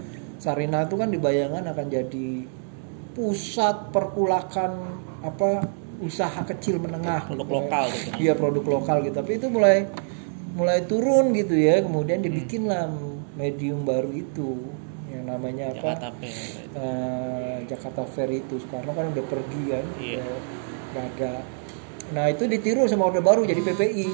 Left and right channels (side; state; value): left; silent; digital silence